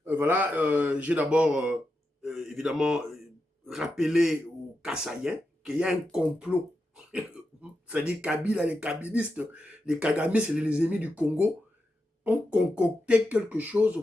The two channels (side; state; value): both; normal; correlation 0.87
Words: voilà, j'ai d'abord, évidemment, rappelé aux Kassaïens qu'il y a un complot. C'est-à-dire Kabila, les kabylistes, les Kagamistes, les ennemis du Congo, ont concocté quelque